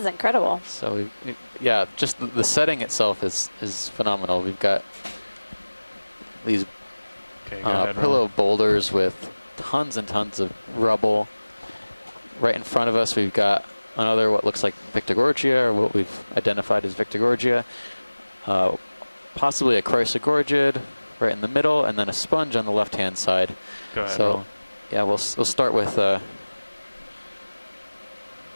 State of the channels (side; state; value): both; inverted; correlation -1.00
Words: incredible. So yeah, just the setting itself is phenomenal. We've got these Okay, go ahead, pillow Ron. boulders with tons and tons of rubble. Right in front of us, we've got another what looks like Victorgorgia, or what we've identified as Victorgorgia. Possibly a Chrysogorgid right in the middle, and then a sponge on the left-hand side. Go ahead, So Ron. yeah, we'll start with